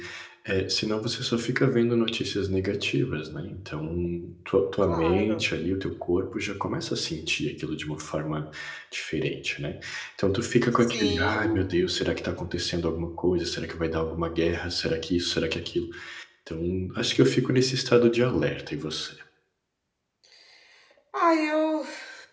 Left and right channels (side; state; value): both; identical; correlation 1.00